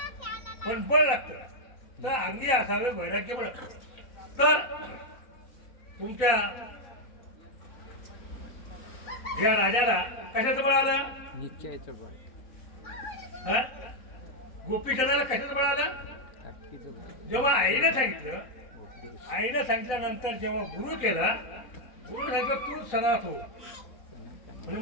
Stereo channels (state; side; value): late; right; 4.2 ms